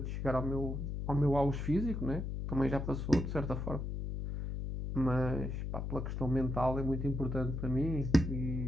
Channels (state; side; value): noise; left; hum, 3 dB below the sound